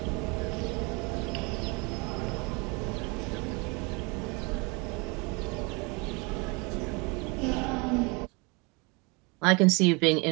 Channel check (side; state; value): left; quieter; 29.3 dB